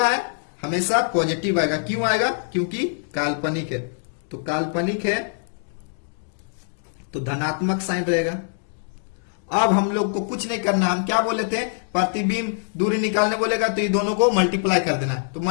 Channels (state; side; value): silent; right; digital silence